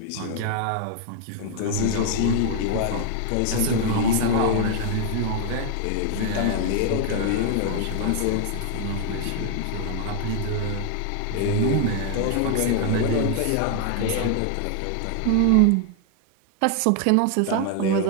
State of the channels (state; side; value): different; both; correlation 0.00